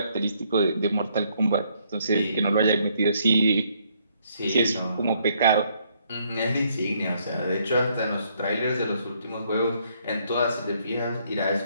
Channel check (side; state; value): both; inverted; correlation -0.69